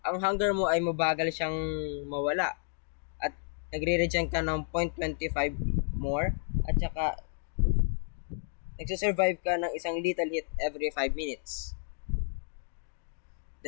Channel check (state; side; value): silent; right; digital silence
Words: ang hunger mo ay mabagal siyang mawala at nagre-regen ka ng 0.25 more at saka nagsusurvive ka ng isang lethal hit every 5 minutes.